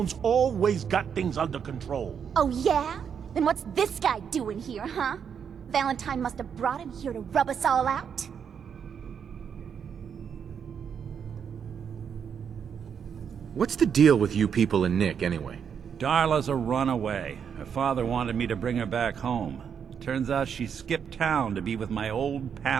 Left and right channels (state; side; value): quieter; left; 7.4 dB